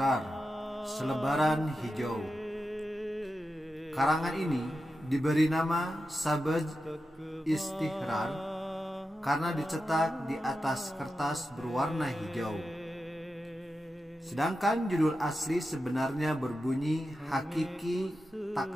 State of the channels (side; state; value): both; normal; correlation 0.90